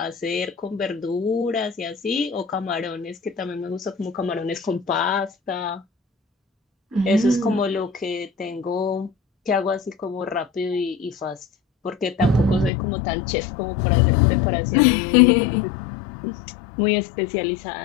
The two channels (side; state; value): right; drops out; at 12.7 s